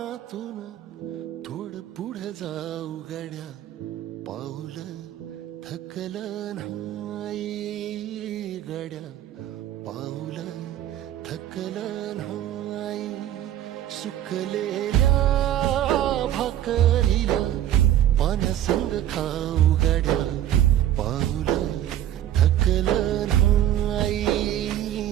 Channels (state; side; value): quieter; left; 12.0 dB